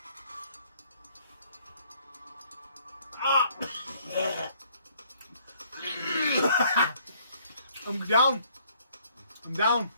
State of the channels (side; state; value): both; inverted; correlation -0.64